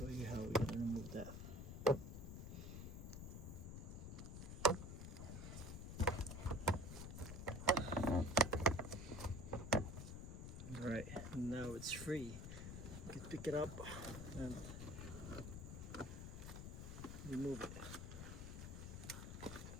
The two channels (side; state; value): left; noise; rumble, 7 dB below the sound